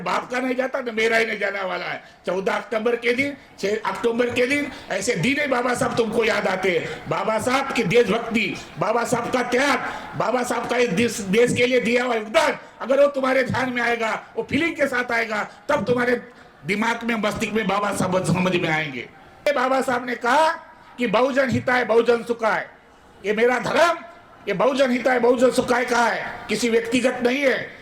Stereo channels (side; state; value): both; identical; correlation 1.00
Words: का नहीं जाता तो मेरा ही नहीं जाने वाला है। 14 अक्टूबर के दिन, 6 अक्टूबर के दिन ऐसे दिन ही बाबा साहब तुमको याद आते हैं। बाबा साहब की देशभक्ति, बाबा साहब का त्याग, बाबा साहब का इस देश के लिए दिया हुआ योगदान अगर वो तुम्हारे ध्यान में आएगा, वो फीलिंग के साथ आएगा, तब तुम्हारे दिमाग में, मस्तिष्क में बाबा साहब समझ में आएंगे। बाबा साहब ने कहा कि बहुजन हिताय बहुजन सुखाय, ये मेरा धर्म, ये बहुजन हिताय बहुजन सुखाय का है, किसी व्यक्तिगत नहीं है।